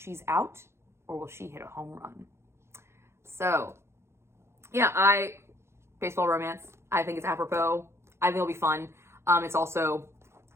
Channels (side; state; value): left; late; 0.13 ms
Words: out, or will she hit a home run? So, yeah, baseball romance. I think it's apropos. I think it'll be fun. It's also